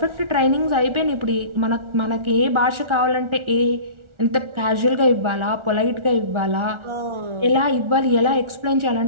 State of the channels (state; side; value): late; left; 1.4 ms